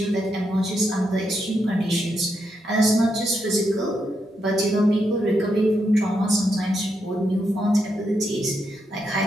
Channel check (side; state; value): both; normal; correlation 0.82